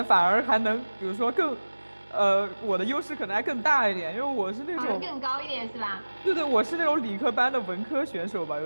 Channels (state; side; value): inverted; both; correlation -1.00